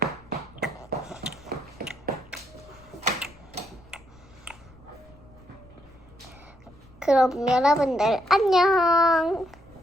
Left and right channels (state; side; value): noise; left; rumble, 25 dB below the sound